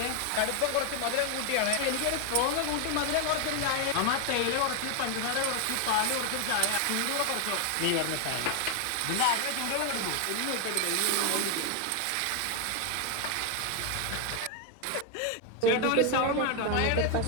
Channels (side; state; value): both; different; correlation 0.01